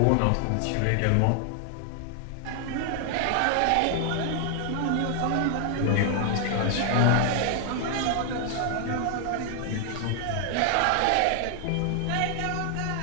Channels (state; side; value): different; both; correlation 0.00